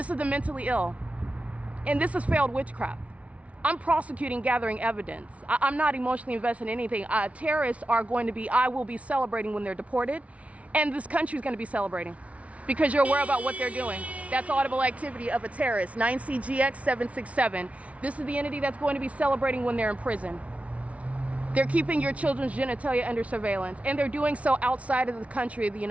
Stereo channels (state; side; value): late; left; 0.065 ms